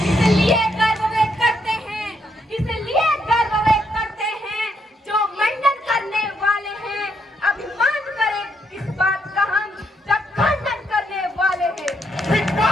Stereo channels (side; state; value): both; normal; correlation 0.76